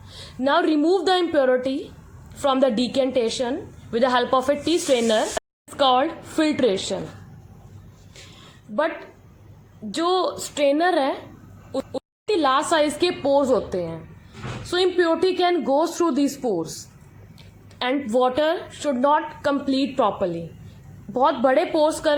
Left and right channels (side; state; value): both; identical; correlation 1.00